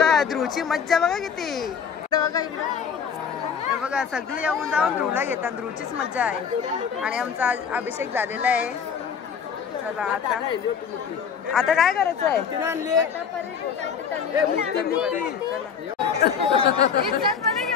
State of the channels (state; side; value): quieter; right; 6.9 dB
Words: ध्रुवची मज्जा बघा किती. बघा हे बघा सगळे येऊन जाऊन ध्रुवला घेतात. ध्रुवचीच मज्जा आहे. आणि आमचा अभिषेक झालेला आहे. चला आता काय करायचं आहे.